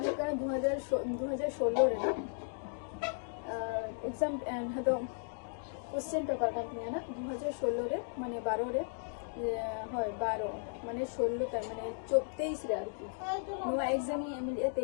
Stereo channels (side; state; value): right; silent; digital silence